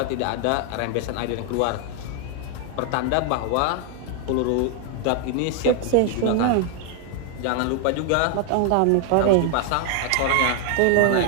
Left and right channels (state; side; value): different; both; correlation 0.00